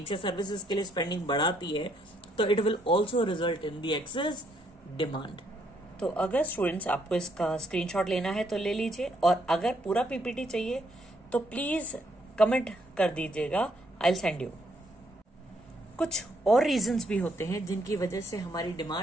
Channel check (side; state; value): both; normal; correlation 0.72